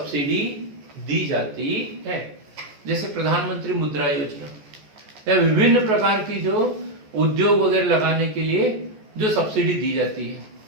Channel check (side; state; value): left; late; 14 ms